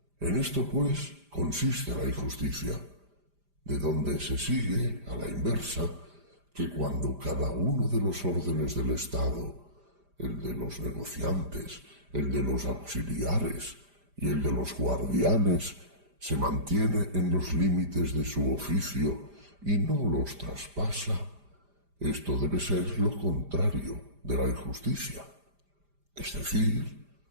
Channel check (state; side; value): late; left; 5.0 ms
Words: En esto, pues, consiste la injusticia, de donde se sigue, a la inversa, que cuando cada uno de los órdenes del Estado, el de los negociantes, el de los auxiliares y el de los guardianes, se mantiene en los límites de su oficio y no los traspasa, esto debe ser lo contrario de la injusticia, es decir,